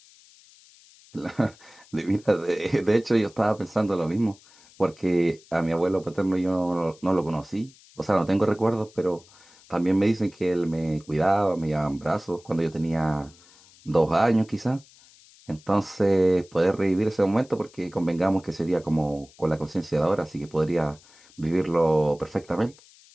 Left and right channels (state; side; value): noise; left; hiss, 26 dB below the sound